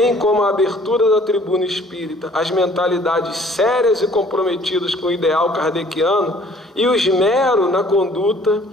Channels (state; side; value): normal; both; correlation 0.56